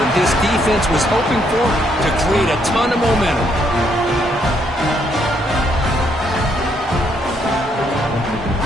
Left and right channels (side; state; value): both; normal; correlation 0.72